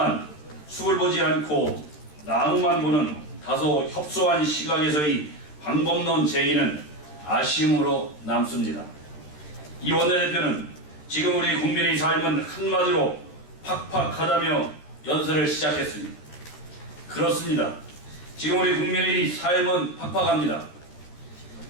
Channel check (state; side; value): late; right; 13 ms